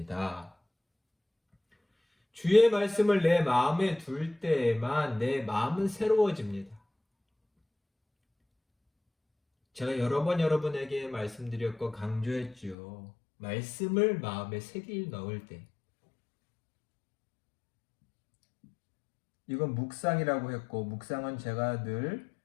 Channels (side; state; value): right; drops out; at 12.8 s